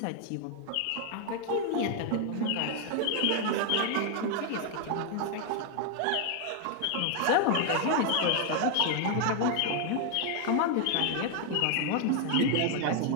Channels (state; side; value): different; both; correlation 0.00